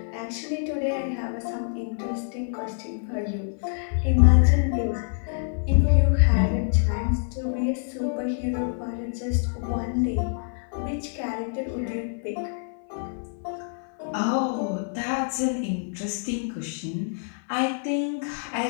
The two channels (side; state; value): right; silent; 61 dB below the other